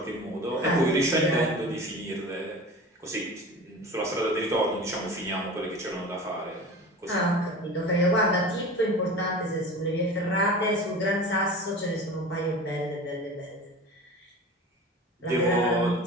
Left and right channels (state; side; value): normal; both; correlation 0.35